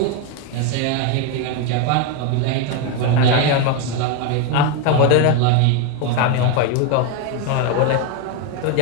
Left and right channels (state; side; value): different; both; correlation 0.02